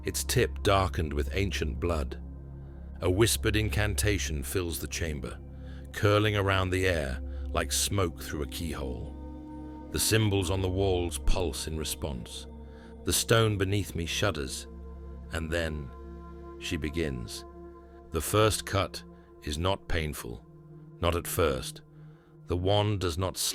its tip darkened with ancient blood. A whispered incantation fills the chamber, curling around the air like smoke through a keyhole. The symbols on the walls pulse in response. The stone beneath me shudders, And then she begins. The first cut is not painful, not at first. The wand does not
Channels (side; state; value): both; identical; correlation 1.00